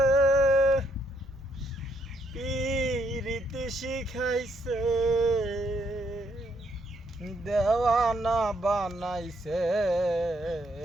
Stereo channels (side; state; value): both; normal; correlation 0.73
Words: পিরিতি শিখাইছে দেওয়ানা বানাইছে